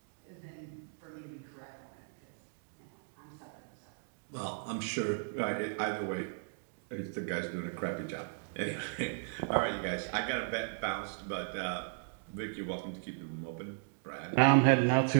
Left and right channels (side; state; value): left; silent; digital silence